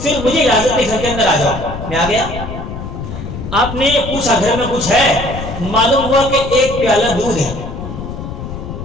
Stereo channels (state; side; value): noise; left; rumble, 8 dB below the sound